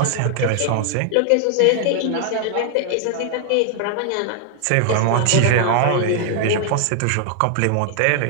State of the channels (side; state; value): both; different; correlation 0.00